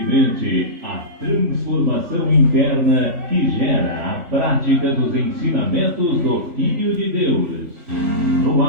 a transformação interna que gera a prática dos ensinamentos do Filho de Deus. No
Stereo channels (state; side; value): late; left; 3.4 ms